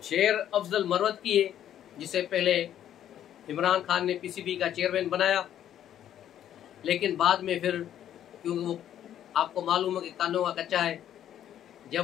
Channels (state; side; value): quieter; right; 10.8 dB